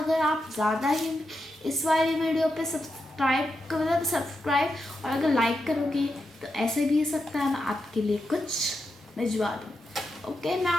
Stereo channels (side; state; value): both; normal; correlation 0.86